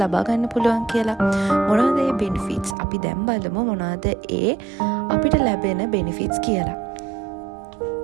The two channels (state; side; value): drops out; left; at 2.8 s